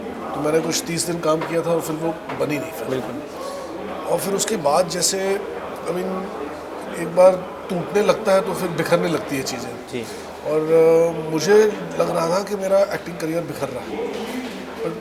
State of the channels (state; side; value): identical; both; correlation 1.00